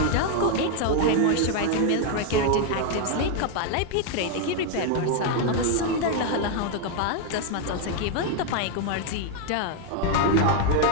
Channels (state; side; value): different; both; correlation 0.01